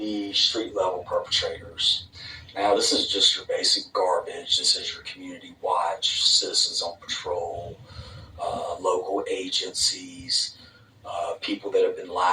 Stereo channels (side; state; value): both; identical; correlation 1.00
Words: street level perpetrators. Now, this is just your basic garbage. This is your community watch, citizens on patrol, local agencies, people that have been